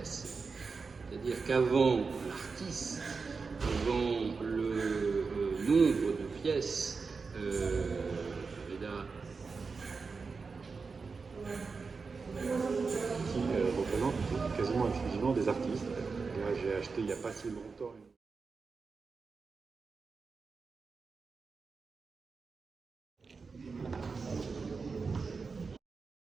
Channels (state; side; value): quieter; left; 4.7 dB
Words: C'est-à-dire qu'avant l'artiste, avant le nombre de pièces, qui représente quasiment exclusivement des artistes. Là, j'ai acheté il n'y a pas si longtemps.